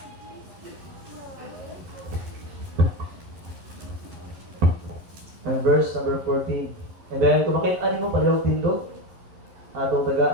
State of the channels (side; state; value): left; late; 11 ms